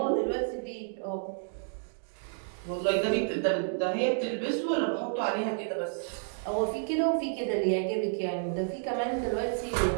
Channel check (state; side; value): silent; left; digital silence